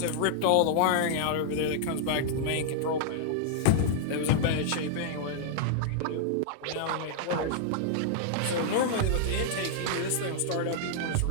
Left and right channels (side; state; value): both; different; correlation -0.01